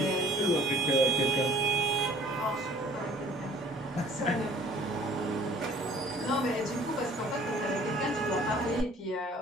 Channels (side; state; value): both; normal; correlation 0.53